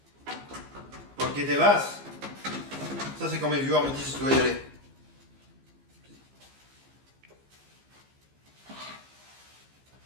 Ok, t'es vaste. Ça, c'est quand mes viewers me disent que je dois y aller.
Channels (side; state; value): left; late; 15 ms